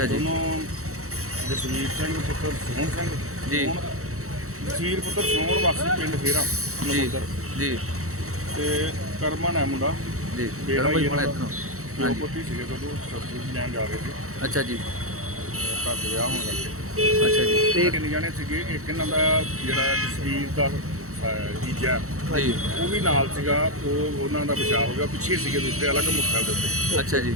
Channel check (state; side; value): late; left; 0.64 ms